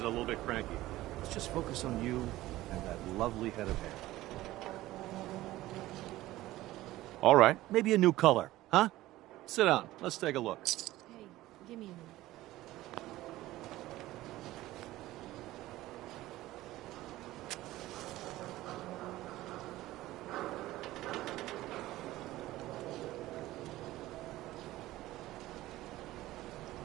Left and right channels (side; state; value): left; quieter; 16.5 dB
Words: little bit cranky. Let's just focus on you and that lovely head of hair. All right. Maybe a new color, huh? Sit down. Let's take a look. Hey, give me a minute.